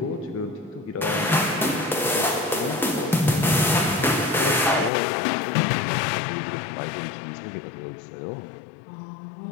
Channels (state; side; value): drops out; right; at 4.9 s